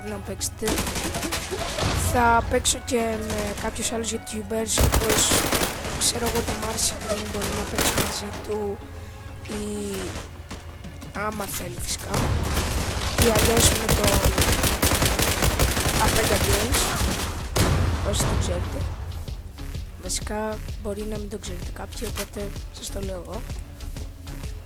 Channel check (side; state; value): both; identical; correlation 1.00